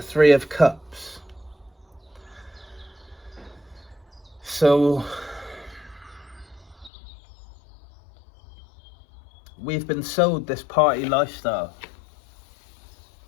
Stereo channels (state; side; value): drops out; right; at 6.9 s